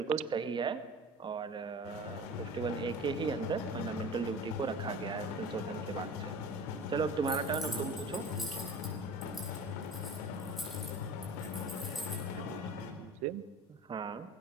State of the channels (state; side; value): normal; both; correlation 0.38